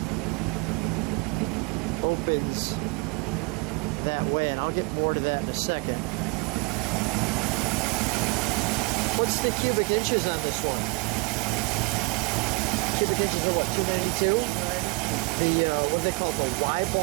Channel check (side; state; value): left; quieter; 29.2 dB